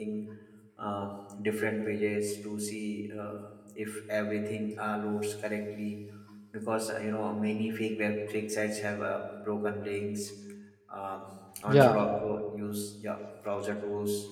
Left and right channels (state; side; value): identical; both; correlation 1.00